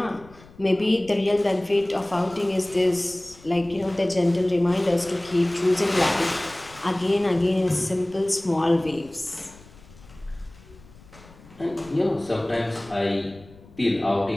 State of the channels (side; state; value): left; noise; rumble, 23 dB below the sound